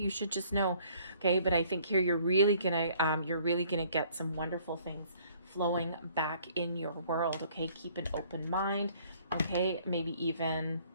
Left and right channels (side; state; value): both; inverted; correlation -0.59